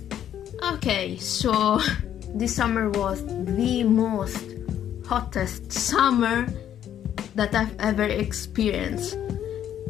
Okay, so this summer was the most hottest summer that I've ever experienced.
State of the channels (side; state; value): right; quieter; 10.4 dB